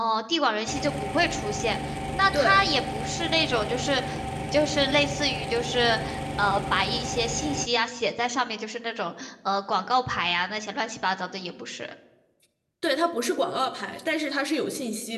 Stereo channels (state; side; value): identical; both; correlation 1.00